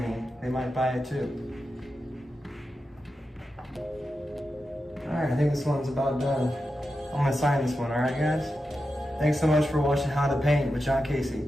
they might buy it too. Alright, I think this one's about done. I'm gonna sign this one, alright guys? Thanks so much for watching How to Paint with John Casey.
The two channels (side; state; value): both; normal; correlation 0.90